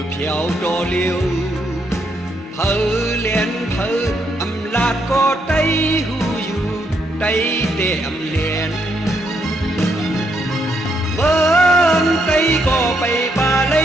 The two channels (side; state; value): both; normal; correlation 0.76